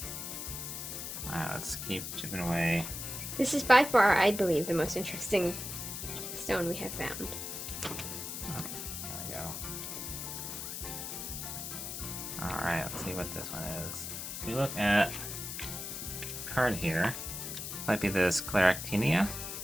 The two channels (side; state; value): left; noise; hiss, 6 dB below the sound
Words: Alright, let's keep chipping away. This is by far, I believe, the most interesting stone we have found. There we go. Alright, let's see what this one is. If we look at the card here, might be this Scleractinia.